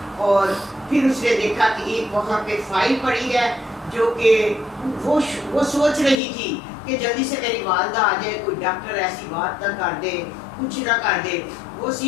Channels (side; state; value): right; drops out; at 6.2 s